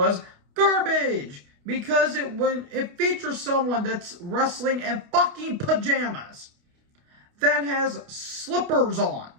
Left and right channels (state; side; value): late; left; 29 ms